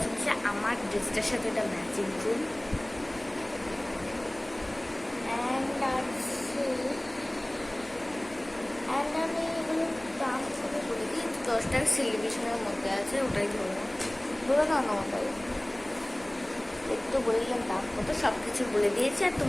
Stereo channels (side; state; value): left; noise; hum, 24 dB below the sound